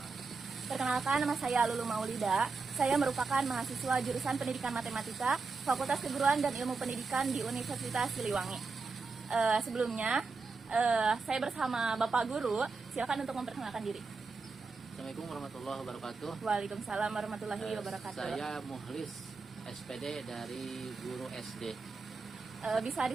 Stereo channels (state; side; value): quieter; left; 4.4 dB